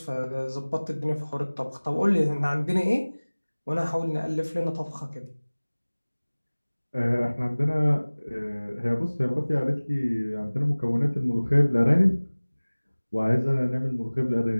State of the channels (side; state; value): both; inverted; correlation -1.00